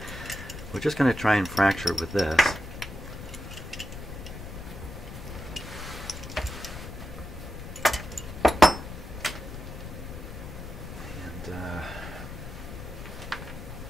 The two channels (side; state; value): left; noise; rumble, 10 dB below the sound